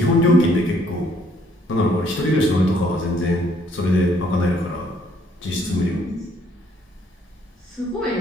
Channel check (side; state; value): both; normal; correlation 0.65